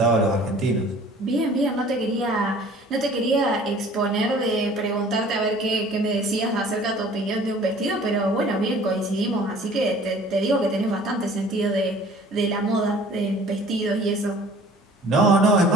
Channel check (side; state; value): both; normal; correlation 0.50